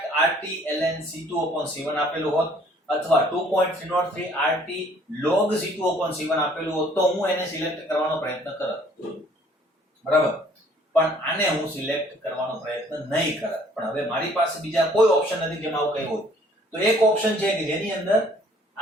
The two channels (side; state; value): both; normal; correlation 0.58